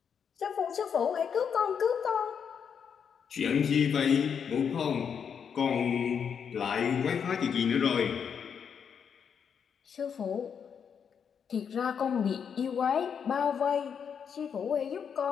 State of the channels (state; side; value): quieter; right; 7.2 dB